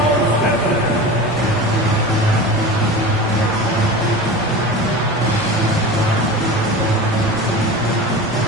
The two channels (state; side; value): normal; both; correlation 0.32